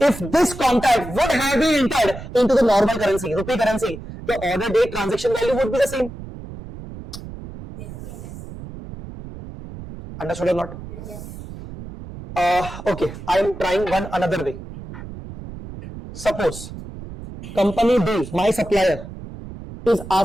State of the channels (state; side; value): noise; right; rumble, 12 dB below the sound